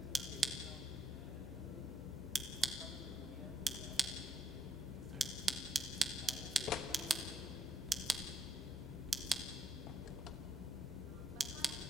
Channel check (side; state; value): both; normal; correlation 0.73